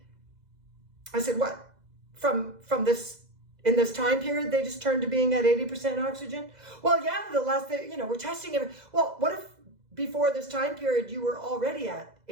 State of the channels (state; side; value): late; left; 2.0 ms